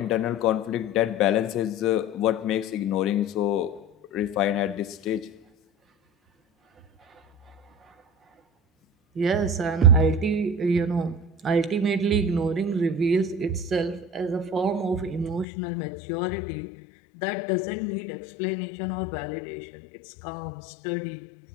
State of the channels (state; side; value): drops out; right; at 15.5 s